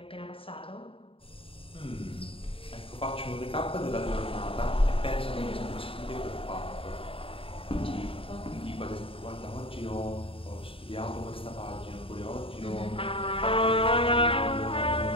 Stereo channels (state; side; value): late; right; 0.27 ms